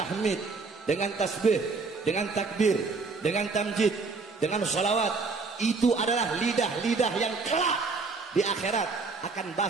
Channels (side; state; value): left; quieter; 4.2 dB